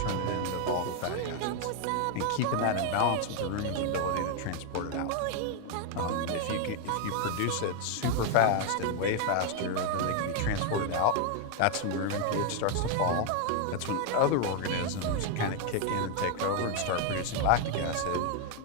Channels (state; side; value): different; both; correlation 0.01